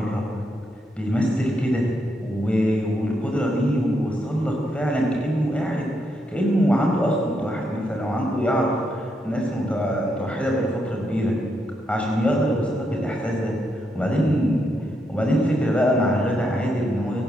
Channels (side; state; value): both; normal; correlation 0.80